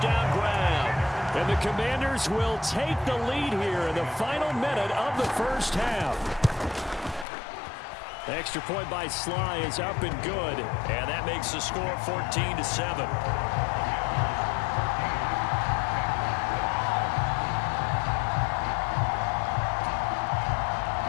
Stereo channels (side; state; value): right; drops out; at 7.2 s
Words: grab. And the Commanders will take the lead here in the final minute of the first half. Extra point by Sly is up and good. And that makes the score 14-7.